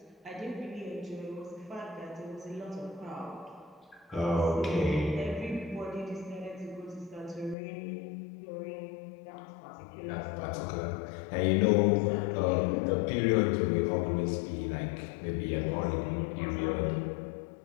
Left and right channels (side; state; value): right; drops out; at 7.6 s